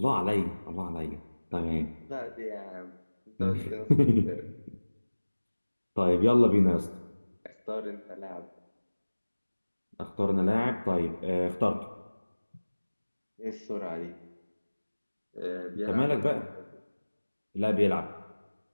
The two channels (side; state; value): both; inverted; correlation -1.00